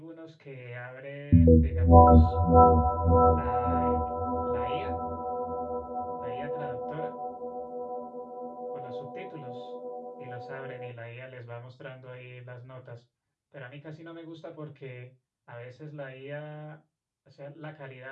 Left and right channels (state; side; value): identical; both; correlation 1.00